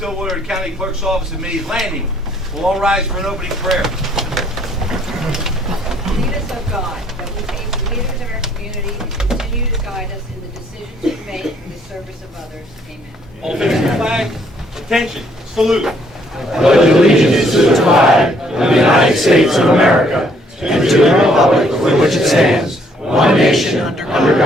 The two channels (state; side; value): normal; both; correlation 0.66